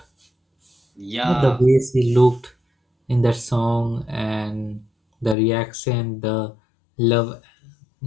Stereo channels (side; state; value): right; drops out; at 5.4 s